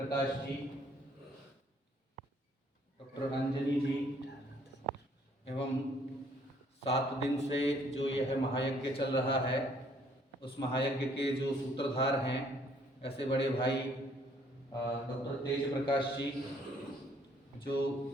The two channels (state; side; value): normal; both; correlation 0.63